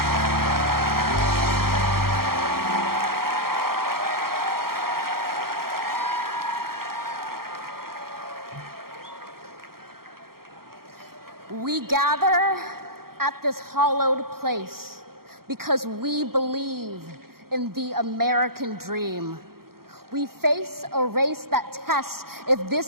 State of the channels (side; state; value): left; late; 0.93 ms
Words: We gather at this hallowed place because we believe in the American dream. We face a race that tests if